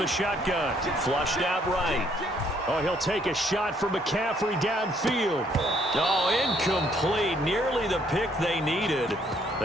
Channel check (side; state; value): both; normal; correlation 0.67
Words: shotgun, flushed out right. Oh, he'll take a shot from McCaffrey downfield. Oh, incomplete. Nearly the pick they needed.